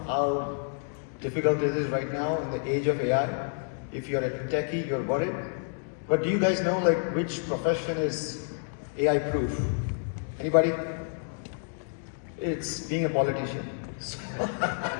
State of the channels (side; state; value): right; silent; 59 dB below the other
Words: how difficult it is right now in the age of AI. If you're a techie, you're worried. But do you guys know like which profession is AI proof? Anybody? It's being a politician.